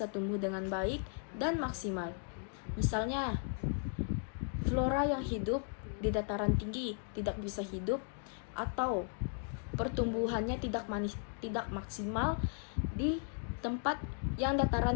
tumbuh dengan baik dan maksimal. Misalnya, flora yang hidup di dataran tinggi tidak bisa hidup atau pertumbuhannya tidak maksimal di tempat yang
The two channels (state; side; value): silent; right; 54 dB below the other